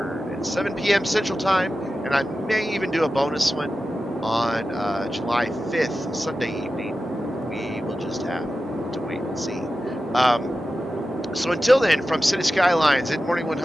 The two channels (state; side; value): normal; both; correlation 0.93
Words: at 7 p.m. Central Time, and I may even do a bonus one on July 5th, Sunday evening. We will just have to wait and see. So until then, from City Skylines in Morningwood